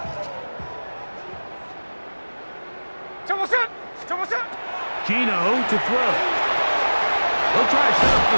Tell what's up? Tell what's up? Gino to throw. They'll try to set up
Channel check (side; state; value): both; inverted; correlation -1.00